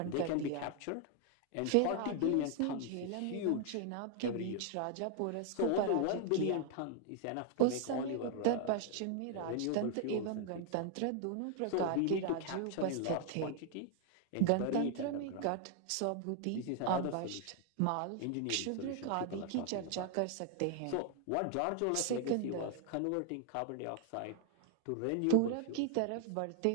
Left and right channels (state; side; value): different; both; correlation 0.00